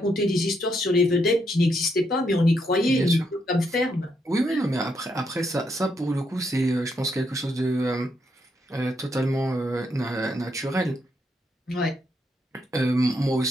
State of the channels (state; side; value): normal; both; correlation 0.78